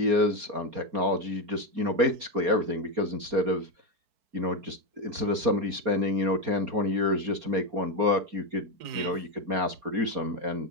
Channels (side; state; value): left; late; 4.3 ms